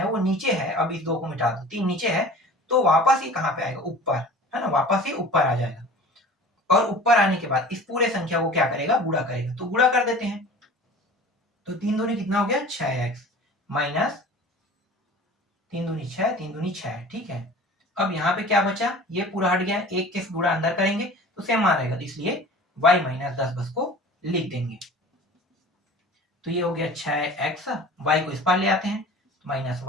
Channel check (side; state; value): both; normal; correlation 0.42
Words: वो नीचे है, अब इस 2 को मिटा दो, 3 नीचे है, तो वापस ये कहाँ पे आएगा, ऊपर, है ना, वापस ये ऊपर आ जाएगा, और ऊपर आने के बाद इस पूरे संख्या को क्या करेगा, गुणा करेगा, तो गुणा कर देते हैं, तो 3 दूनी कितना हो गया, 6x माइनस 3 दूनी 6, 3 दूनी 6, ठीक है। अब यहाँ पे क्या बचा, ये पूरा हट गया, एक के गुणा अंदर करेंगे तो सेम मान रहेगा, इसलिए y माइनस 10 बस को लिख देंगे, तो ये हो गया 6x, y को इस पार ले आते हैं, माइनस